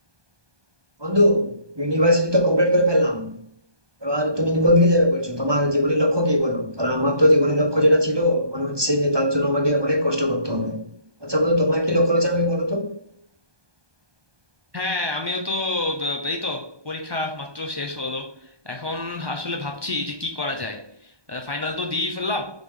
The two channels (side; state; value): left; late; 1.2 ms